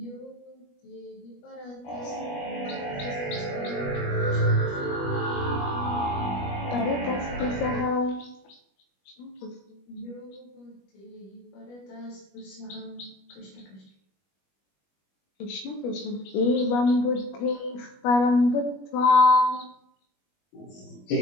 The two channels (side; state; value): right; late; 21 ms